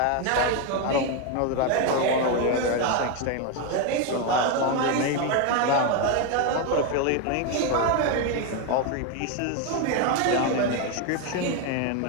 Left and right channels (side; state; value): both; different; correlation 0.02